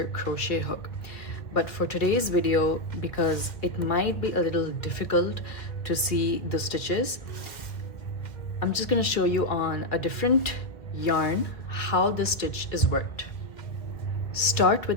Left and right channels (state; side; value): late; right; 2.0 ms